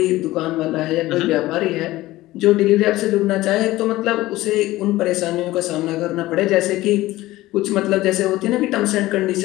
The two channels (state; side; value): quieter; right; 17.4 dB